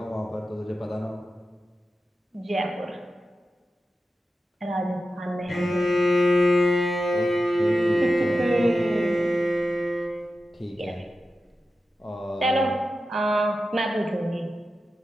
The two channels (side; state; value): both; normal; correlation 0.91